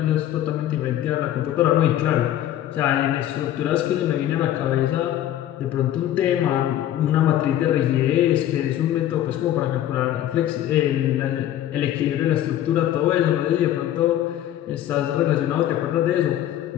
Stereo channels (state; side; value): quieter; right; 12.2 dB